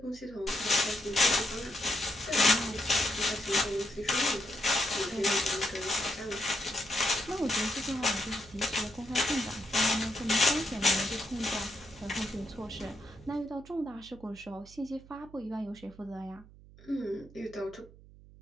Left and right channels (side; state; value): right; noise; hum, 21 dB below the sound